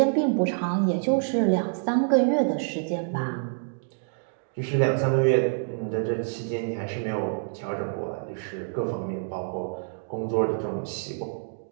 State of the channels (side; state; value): left; silent; digital silence